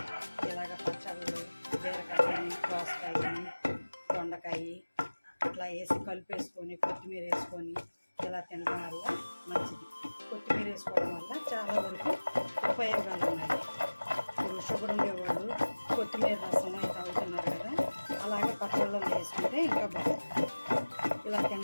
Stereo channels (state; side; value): inverted; both; correlation -1.00